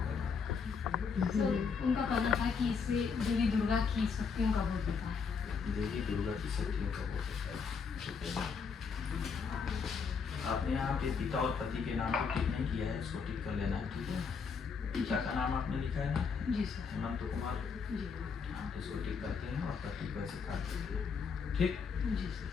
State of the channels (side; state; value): right; quieter; 5.7 dB